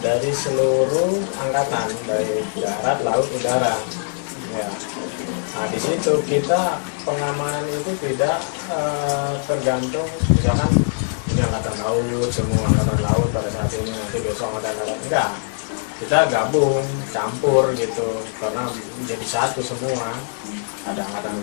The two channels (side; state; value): right; silent; digital silence